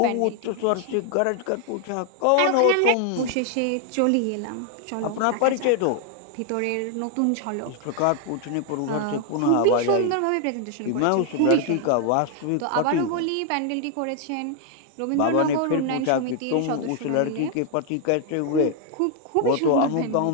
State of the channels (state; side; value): different; both; correlation 0.00